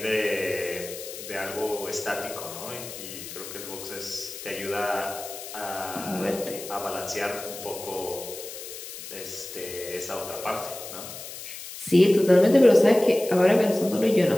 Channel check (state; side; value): noise; left; hiss, 11 dB below the sound